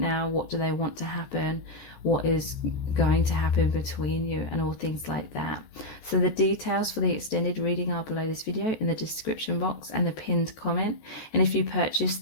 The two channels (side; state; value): right; late; 14 ms